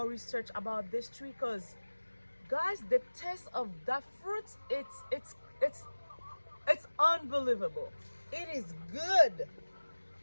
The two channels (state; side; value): inverted; both; correlation -1.00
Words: research about this tree because guys, the taste of that fruit, it's unbelievable. It is good.